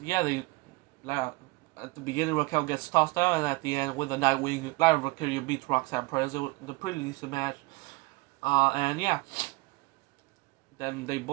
yeah, at the beginning Raquel gets tossed out, and at the end with the Nightwing, Lyra Valkyria beats Roxanne Perez. It was a pretty decent match, and yeah. Then they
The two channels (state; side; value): quieter; left; 23.4 dB